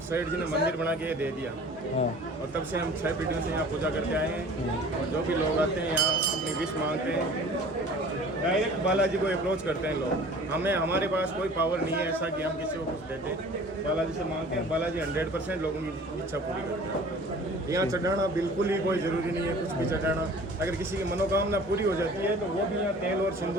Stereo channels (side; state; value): both; normal; correlation 0.46